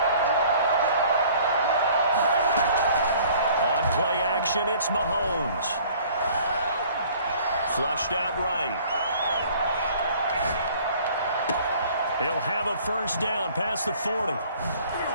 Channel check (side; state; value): both; inverted; correlation -0.53